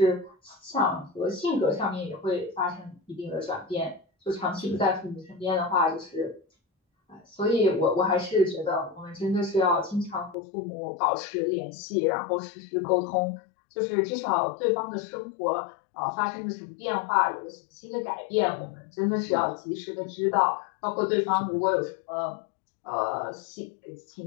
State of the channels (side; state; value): right; drops out; at 10.4 s